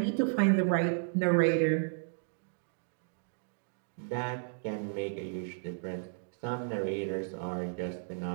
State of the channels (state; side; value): silent; left; digital silence